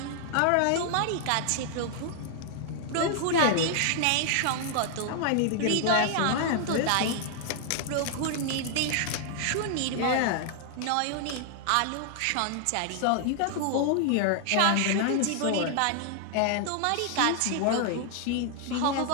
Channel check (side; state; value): both; different; correlation 0.00